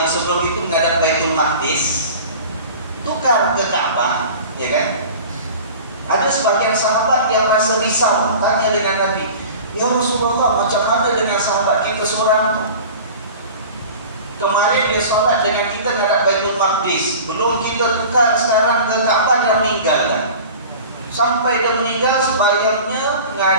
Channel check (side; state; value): both; inverted; correlation -0.39